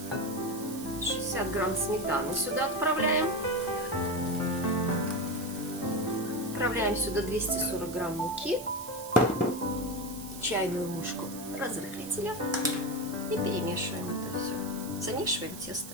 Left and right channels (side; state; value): right; noise; hiss, 13 dB below the sound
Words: 60 грамм сметаны сюда отправляем. Отправляем сюда 240 грамм муки, чайную ложку разрыхлителя и перемешиваем это все. Замешиваем